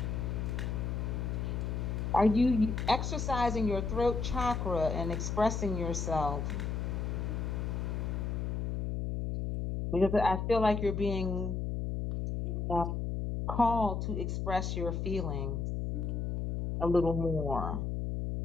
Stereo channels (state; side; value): noise; left; hum, 1 dB below the sound